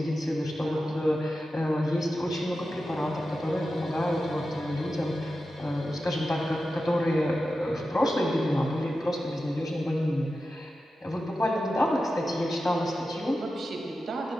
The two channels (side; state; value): both; normal; correlation 0.92